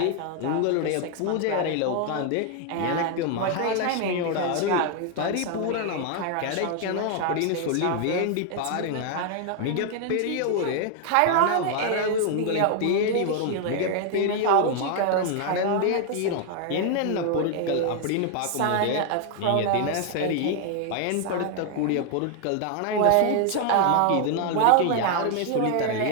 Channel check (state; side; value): different; both; correlation 0.00